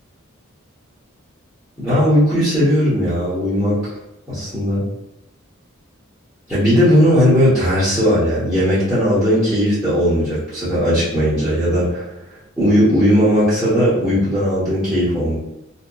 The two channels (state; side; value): normal; both; correlation 0.57